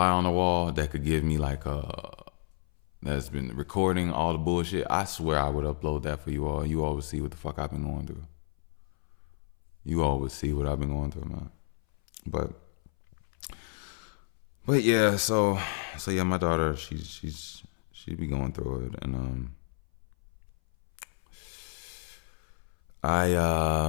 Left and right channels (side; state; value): right; silent; 57 dB below the other